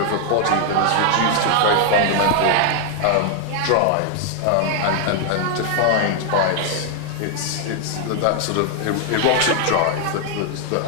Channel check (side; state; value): both; different; correlation 0.00